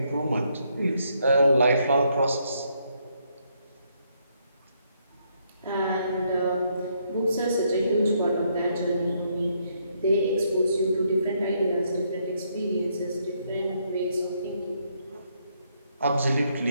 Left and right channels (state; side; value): inverted; both; correlation -0.73